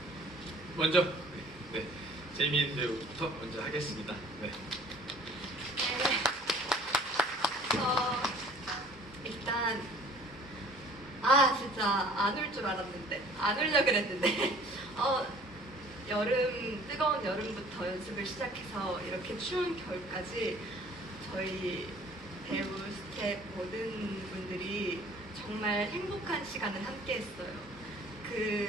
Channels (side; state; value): both; normal; correlation 0.52